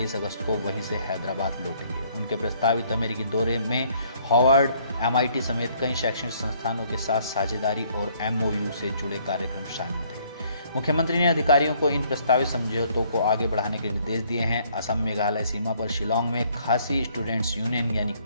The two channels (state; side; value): inverted; both; correlation -0.64